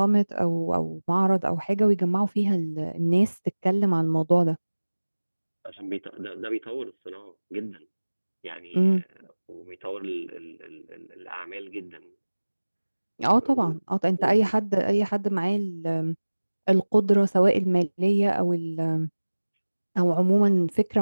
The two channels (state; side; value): inverted; both; correlation -1.00